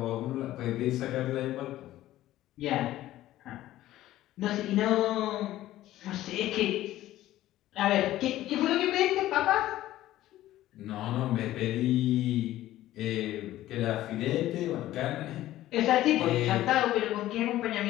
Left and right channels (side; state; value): right; quieter; 14.6 dB